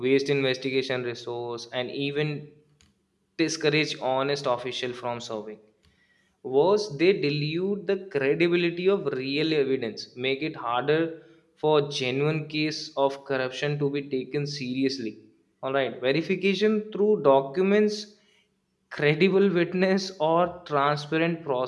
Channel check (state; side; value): identical; both; correlation 1.00